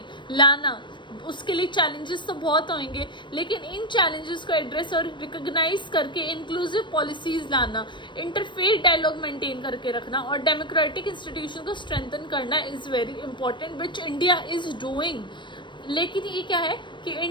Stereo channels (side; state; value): right; late; 0.23 ms